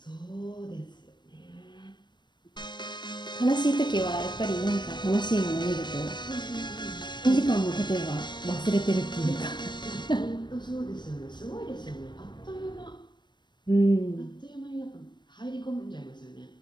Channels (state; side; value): late; right; 0.22 ms